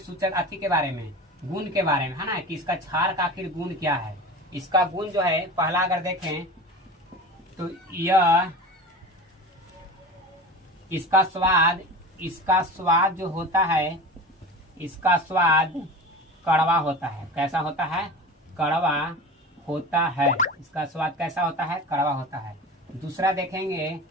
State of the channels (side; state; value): both; normal; correlation 0.33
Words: अति के बारे में, गुण के बारे में है ना, कि इसका क्षार का आखिर गुण क्या है। इसका गुण जो है पहला अगर देखें तो यह इसका स्वाद जो होता है, इसका स्वाद कड़वा होता है। कैसा होता है, कड़वा होता है। इसका स्वाद कैसा होता है, कड़वा होता है। दूसरा देखेंगे